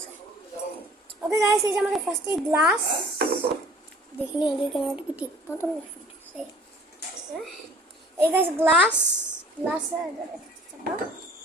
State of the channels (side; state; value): both; normal; correlation 0.51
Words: ওকে গাইস, এই যে আমাদের ফার্স্টে গ্লাস देखने आगे कैमरा की ठीक ना तो सही है गाइस। ग्लास ग्लास है